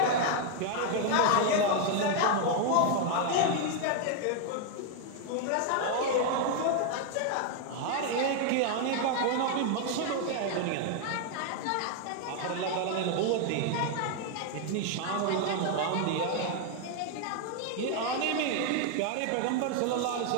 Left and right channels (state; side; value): different; both; correlation 0.00